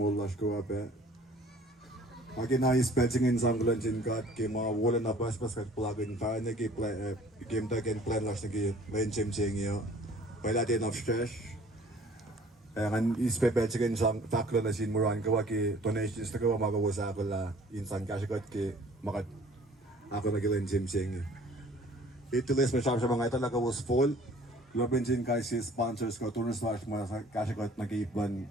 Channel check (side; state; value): both; normal; correlation 0.52